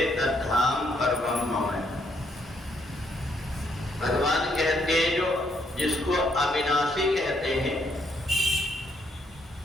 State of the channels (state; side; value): normal; both; correlation 0.73